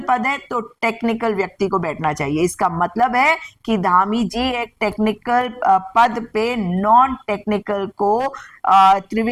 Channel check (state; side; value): identical; both; correlation 1.00